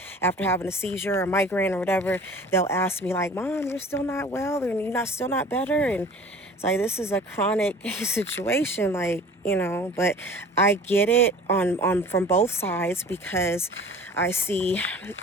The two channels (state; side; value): normal; both; correlation 0.44